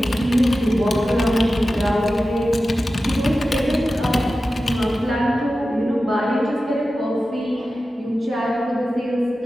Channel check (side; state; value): both; normal; correlation 0.93